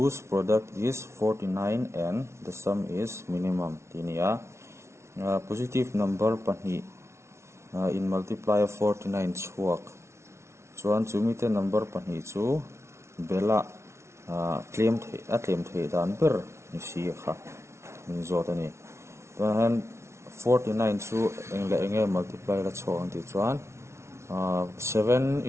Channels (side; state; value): left; late; 0.13 ms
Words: product is 49 and the sum is minimum. Tinia positive number pani in multiplier 49 chuak. Chuan chumite number pani chu bela claim the dan ber ni si kha min zotani. Tuan 49 chu enge multiply la chawang ti chuan 7